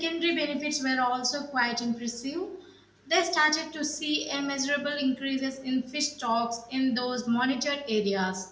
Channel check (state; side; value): identical; both; correlation 1.00